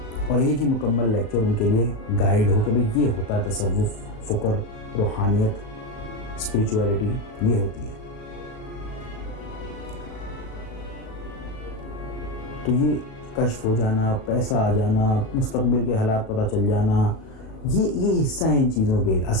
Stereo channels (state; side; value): late; right; 37 ms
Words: اور ایک ہی مکمل لیکچر ان کے لیے گائیڈ ہو کہ بھئی یہ ہوتا ہے تصوف، فکر، روحانیت، اسپریچویلٹی، یہ ہوتی ہے۔ تو یہ کشف ہو جانا، پیسہ آ جانا، مستقبل کے حالات پتہ چل جانا، یہ حصہ ہیں ان چیزوں کے۔